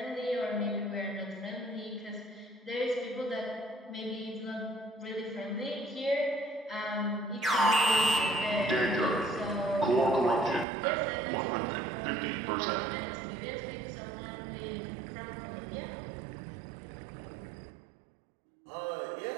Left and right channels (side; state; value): left; drops out; at 10.7 s